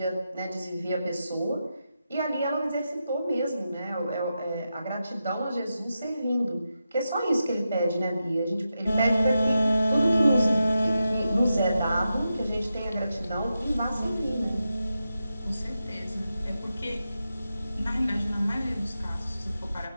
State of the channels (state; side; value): inverted; both; correlation -0.89